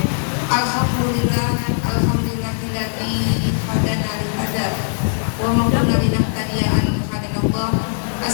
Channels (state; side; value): silent; right; digital silence